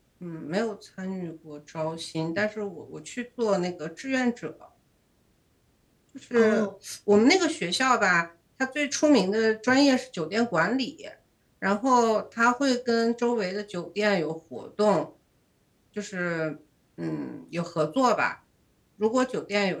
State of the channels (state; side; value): identical; both; correlation 1.00